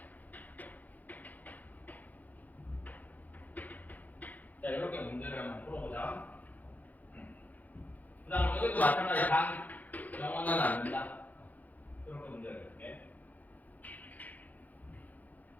자 이렇게 문제를 한번 풀어보자. 그 다음 여기도 마찬가지야. 단 영어는 안 된다. 이렇게 문제를 해볼게.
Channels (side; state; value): right; late; 0.081 ms